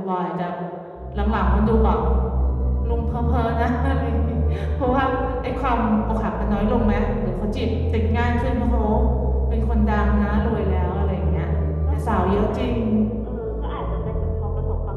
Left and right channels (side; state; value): both; identical; correlation 1.00